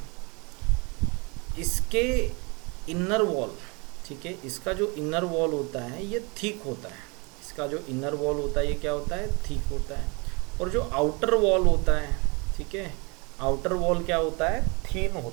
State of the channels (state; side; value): quieter; left; 29.6 dB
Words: इसके इनर वॉल, ठीक है, इसका जो इनर वॉल होता है ये थिक होता है, इसका जो इनर वॉल होता है ये क्या होता है, थिक होता है, और जो आउटर वॉल होता है, ठीक है, आउटर वॉल क्या होता है, थिन